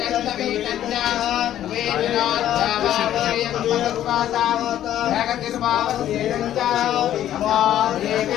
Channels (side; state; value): right; quieter; 11.8 dB